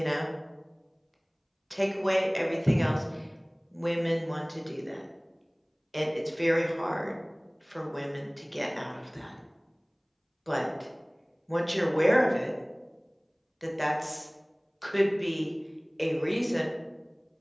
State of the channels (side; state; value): both; identical; correlation 1.00